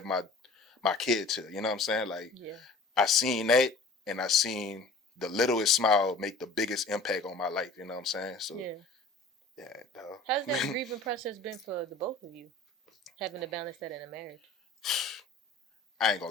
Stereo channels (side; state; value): right; quieter; 3.3 dB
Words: my kids here, you know what I'm saying? Like, I seen that, and I seen the littlest smile make the biggest impact on my life, you know what I'm saying? So yeah, how's that grieving process been for the both of you, having to balance that in a marriage? I ain't